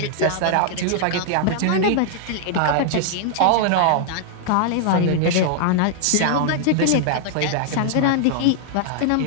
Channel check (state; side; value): different; both; correlation -0.01